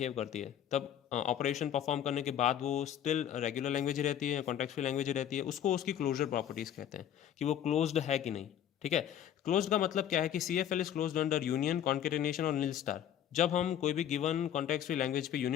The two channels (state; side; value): quieter; right; 10.3 dB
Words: करती है। तब ऑपरेशन परफॉर्म करने के बाद वो स्टिल रेगुलर लैंग्वेज ही रहती है, कॉन्टेक्स्ट फ्री लैंग्वेज ही रहती है, उसको उसकी क्लोजर प्रॉपर्टीज कहते हैं कि वो क्लोज्ड है कि नहीं, ठीक है। क्लोज्ड का मतलब क्या है कि CFL is closed under union, concatenation और नील स्टार। जब हम कोई भी गिवन कॉन्टेक्स्ट फ्री लैंग्वेज पे